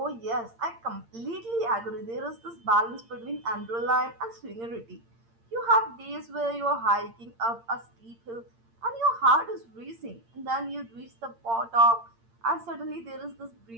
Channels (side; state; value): left; late; 8.7 ms